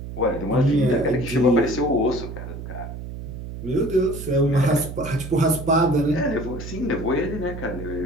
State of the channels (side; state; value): right; noise; hum, 9 dB below the sound